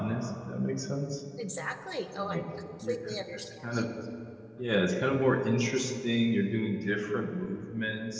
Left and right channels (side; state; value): both; identical; correlation 1.00